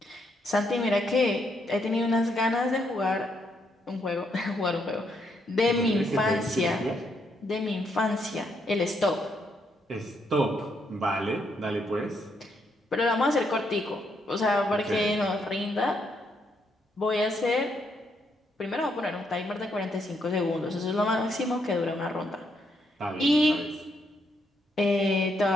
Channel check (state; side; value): normal; both; correlation 0.76